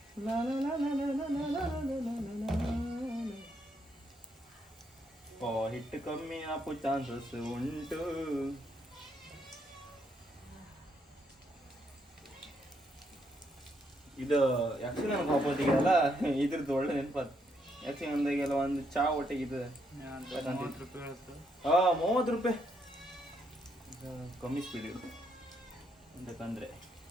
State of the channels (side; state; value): both; normal; correlation 0.76